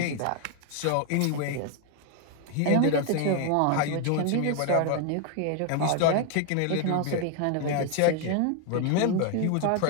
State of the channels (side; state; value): both; different; correlation 0.01